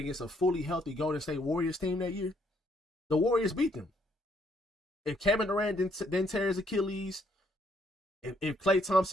a fully healthy Golden State Warriors team that year, the Warriors beat them. If Kevin Durant didn't tear his Achilles, if Klay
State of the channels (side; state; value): both; normal; correlation 0.70